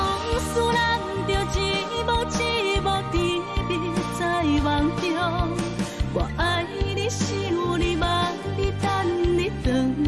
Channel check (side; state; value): both; identical; correlation 1.00